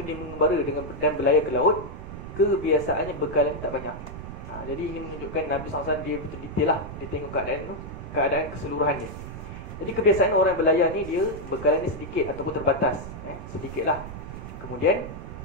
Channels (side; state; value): right; noise; rumble, 10 dB below the sound